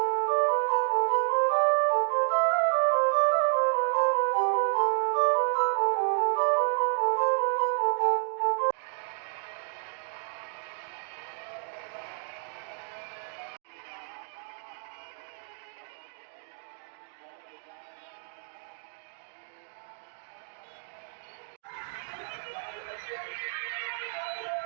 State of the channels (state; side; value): silent; left; 55 dB below the other